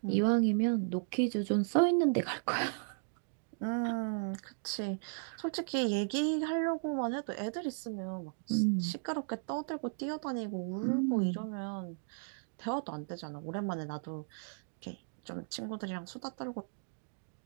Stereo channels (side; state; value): left; silent; digital silence